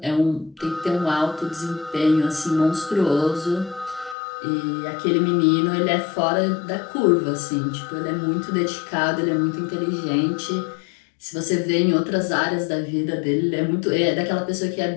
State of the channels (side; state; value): right; drops out; at 4.2 s